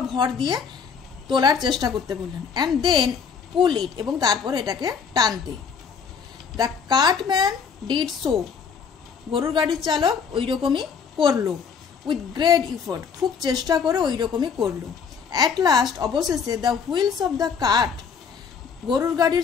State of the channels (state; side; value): quieter; right; 6.3 dB